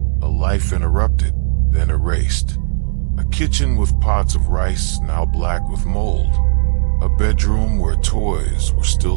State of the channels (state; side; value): silent; left; 62 dB below the other